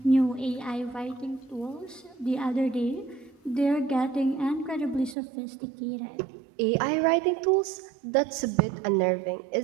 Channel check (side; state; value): left; drops out; at 5.2 s